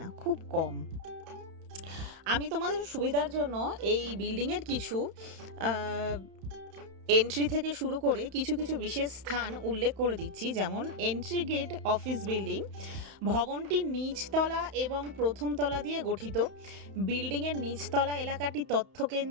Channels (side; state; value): left; late; 31 ms